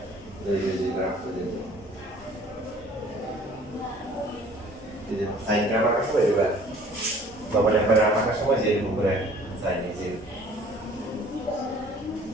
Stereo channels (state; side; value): normal; both; correlation 0.52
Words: এই গ্রাফ করে দিন। এই যে সাইন গ্রাফ আঁকার সময় এবার বাবা একবার গ্রাফ আঁকার সময় যে এরকম করে সাইন এই যে